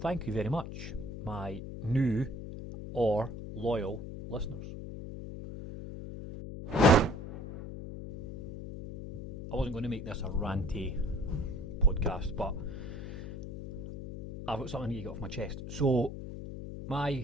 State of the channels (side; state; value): left; noise; hum, 9 dB below the sound